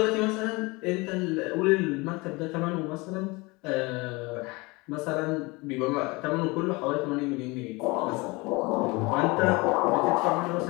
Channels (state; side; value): quieter; right; 25.0 dB